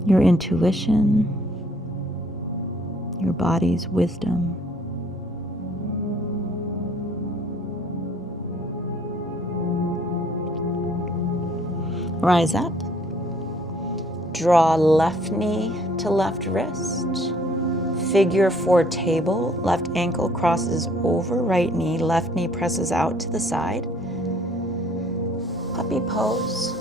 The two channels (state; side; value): normal; both; correlation 0.61